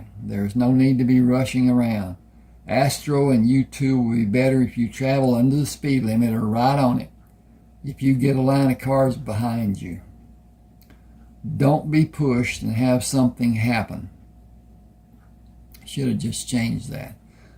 There's no need to be rushing around. Astro and you two will be better if you travel under the speed limit or right on it. If you get a line of cars behind you. Don't be pushed and have something happen. Should have just changed that.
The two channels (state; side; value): identical; both; correlation 1.00